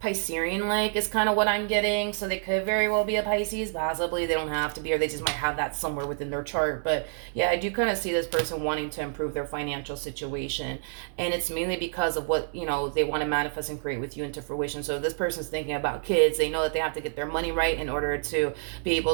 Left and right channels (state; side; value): silent; left; digital silence